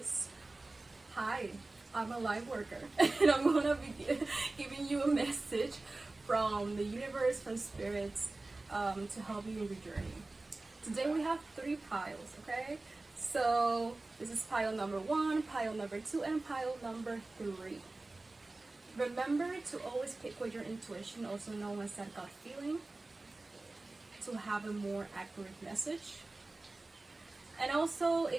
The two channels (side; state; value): left; quieter; 3.1 dB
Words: hi, I'm a light worker and I'm gonna be giving you a message from the universe, from spirits, to help you in your journey. Today we have 3 piles, okay? So this is pile number 1, pile number 2, and pile number 3. Remember to always pick with your intuition, also known as that gut feeling, to have a more accurate message. And also,